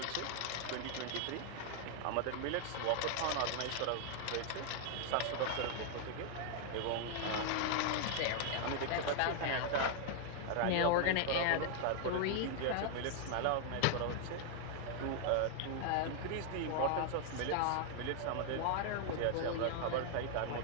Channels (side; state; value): both; different; correlation 0.00